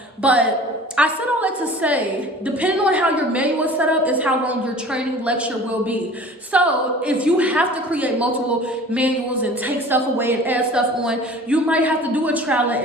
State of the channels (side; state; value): both; normal; correlation 0.44